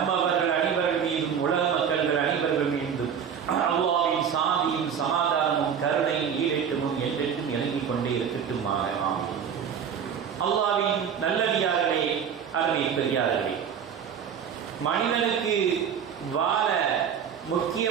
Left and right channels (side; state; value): left; quieter; 7.7 dB